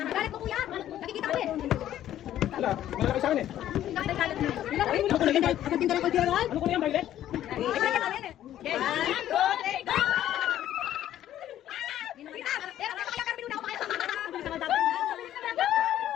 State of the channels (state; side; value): quieter; right; 12.1 dB